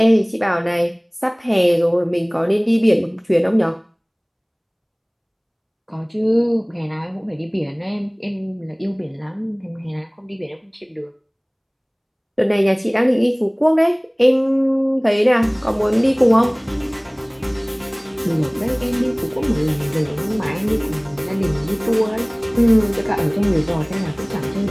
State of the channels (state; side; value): identical; both; correlation 1.00